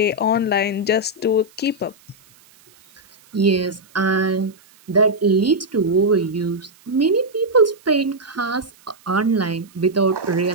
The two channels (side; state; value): right; noise; hiss, 29 dB below the sound